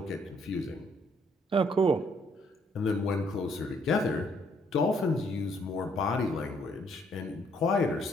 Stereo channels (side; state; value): both; normal; correlation 0.68